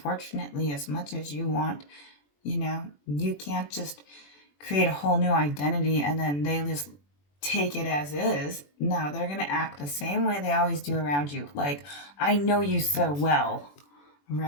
as much as you want, you can't just create a whole new identity and then they just take it as is. No, they're going to act the same way they always do around you. Like, I know you so well,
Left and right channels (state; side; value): late; right; 21 ms